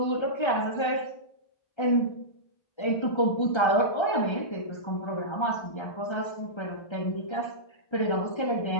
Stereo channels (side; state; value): right; late; 1.3 ms